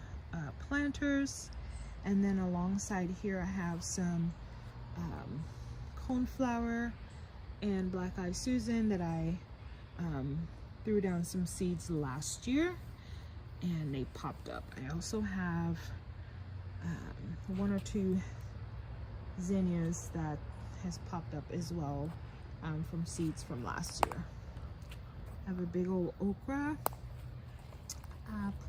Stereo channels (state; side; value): identical; both; correlation 1.00